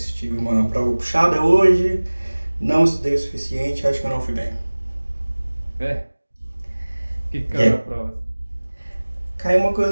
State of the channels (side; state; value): both; inverted; correlation -1.00